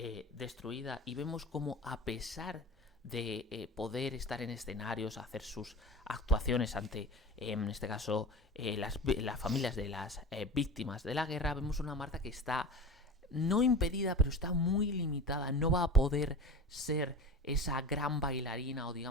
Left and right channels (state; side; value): normal; both; correlation 0.32